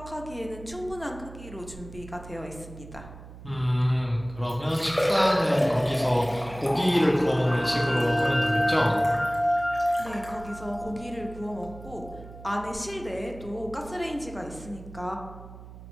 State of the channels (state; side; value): noise; right; hum, 16 dB below the sound